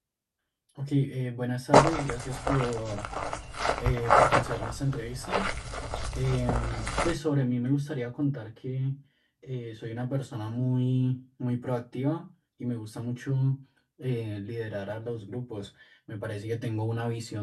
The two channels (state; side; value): identical; both; correlation 1.00